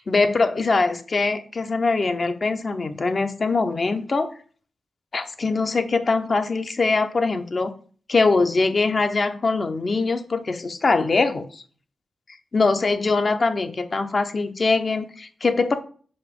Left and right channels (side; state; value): right; quieter; 3.3 dB